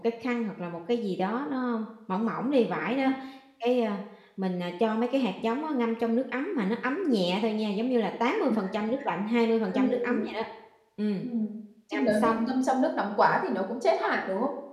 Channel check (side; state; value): both; identical; correlation 1.00